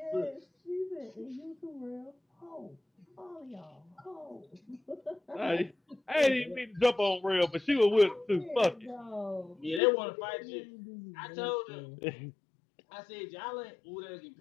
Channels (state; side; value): drops out; right; at 9.8 s